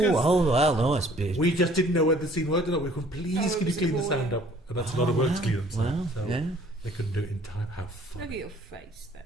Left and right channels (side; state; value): both; normal; correlation 0.56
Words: well, no, it's big. We just didn't know where the scene was. We were going, please, Oh, it can you was clean the appalling. sound up? And that's a lot of work to clean the sound. well, So yeah. they couldn't do it in time. How Look funny. at your face there.